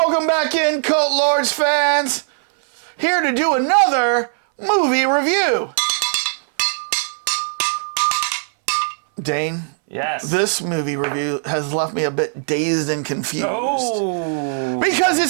back in, Cult Lords fans. Here to do another movie review. Dane? Yes. This movie review has left me a bit dazed and confused. Oh. Because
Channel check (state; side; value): silent; left; 65 dB below the other